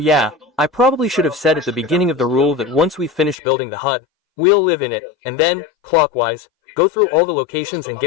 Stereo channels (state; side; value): drops out; right; at 3.4 s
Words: I probably should have said at the beginning of the rule that once we finish building the hut, we'll live in it, and then, clockwise, go through all the locations and